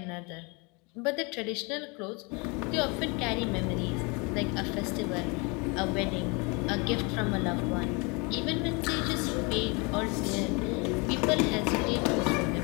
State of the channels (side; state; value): right; quieter; 29.8 dB